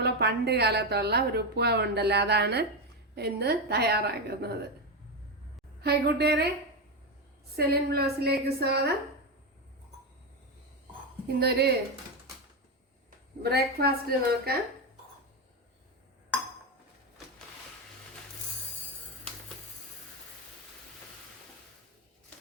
പണ്ട് കാലത്തുള്ള ഒരു ഉപ്പാവ് ഉണ്ടല്ലോ, അതാണ് ഇന്ന് തയ്യാറാക്കുന്നത്. ഹായ് കൂട്ടുകാരെ, സെലിൻ ബ്ലോസിലേക്ക് സ്വാഗതം. ഇന്നൊരു ബ്രേക്ക്ഫാസ്റ്റ് നോക്കാം.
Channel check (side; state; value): both; normal; correlation 0.11